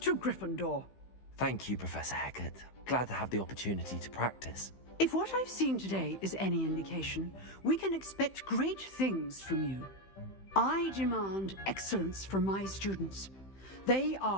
Gryffindor. Thank you, Professor Hecat. Glad to have the opportunity to practice. If what I've seen today is any indication, we can expect great things from you. I demand excellence from my students. They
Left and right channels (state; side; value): late; right; 15 ms